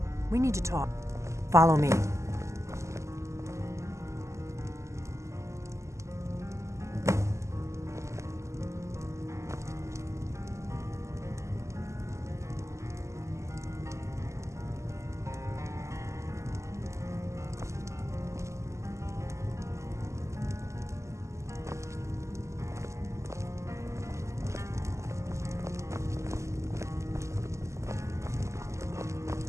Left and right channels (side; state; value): left; late; 0.14 ms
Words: We need to talk. Follow me.